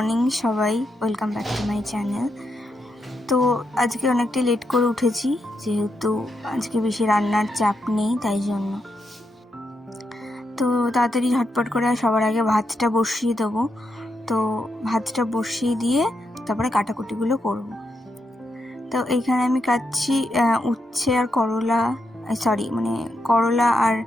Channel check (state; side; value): normal; both; correlation 0.83